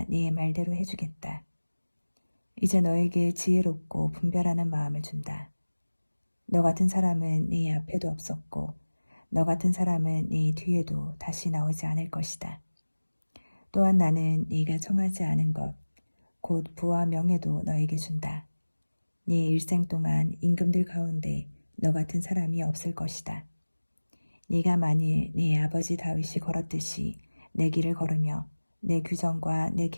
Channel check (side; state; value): both; inverted; correlation -1.00